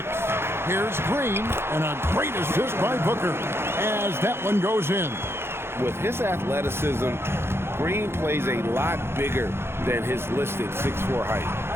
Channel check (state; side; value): late; left; 0.12 ms